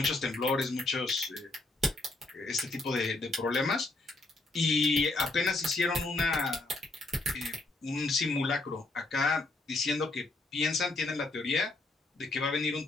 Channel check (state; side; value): quieter; right; 3.1 dB